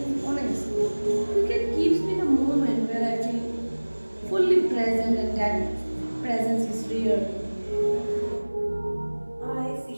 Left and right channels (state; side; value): inverted; both; correlation -1.00